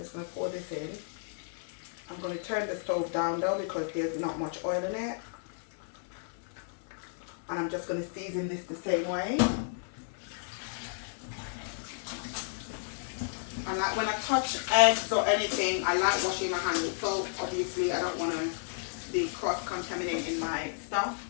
going to pour this in. I'm going to turn the stove down though because there's not much oil in it. And I'm just going to season this the same way. And like when I touch eggs or anything, I like washing my hands with soap. Obviously, I don't want to be cross-contaminating my stuff.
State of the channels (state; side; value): silent; right; digital silence